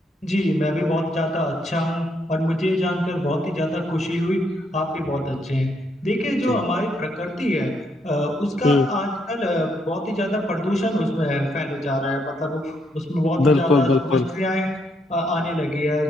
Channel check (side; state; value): both; normal; correlation 0.75